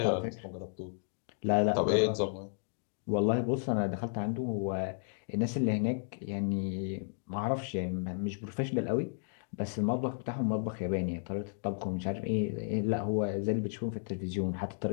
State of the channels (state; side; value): silent; right; digital silence